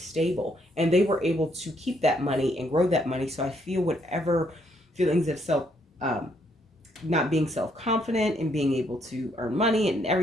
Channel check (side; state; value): both; normal; correlation 0.72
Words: and they were able to keep that money and grow that money. So I feel whatever feelings of not being self-confident and being able to earn money and